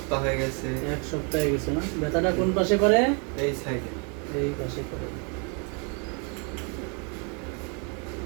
হয়ে গেছে। 1 সপ্তাহ হয়ে গেছে না? ব্যথাটা কোন পাশে করে? এই সাইডে। এই পাশে করে।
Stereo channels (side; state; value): left; quieter; 36.1 dB